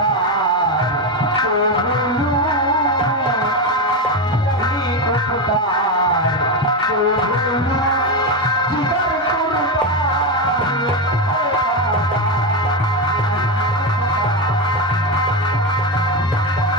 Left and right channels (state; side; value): normal; both; correlation 0.12